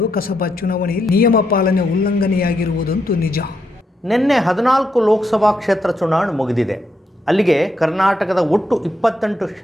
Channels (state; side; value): normal; both; correlation 0.80